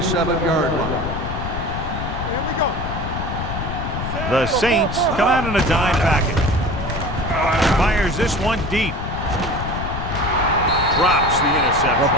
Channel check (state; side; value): noise; left; rumble, 5 dB below the sound